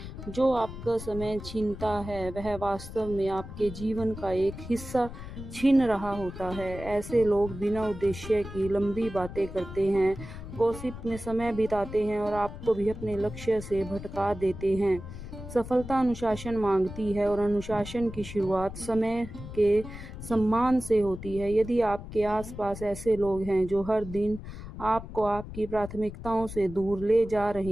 जो आपका समय छीनता है वह वास्तव में आपके जीवन का एक हिस्सा छीन रहा होता है। ऐसे लोग बिना उद्देश्य की लंबी बातें करते हैं, गॉसिप में समय बिताते हैं और आपको भी अपने लक्ष्य से भटका देते हैं। सफलता अनुशासन मांगती है, और अनुशासन की शुरुआत समय के सम्मान से होती है। यदि आपके आसपास ऐसे लोग हैं जो हर दिन आपको आपकी प्राथमिकताओं से दूर ले जा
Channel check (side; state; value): left; noise; rumble, 11 dB below the sound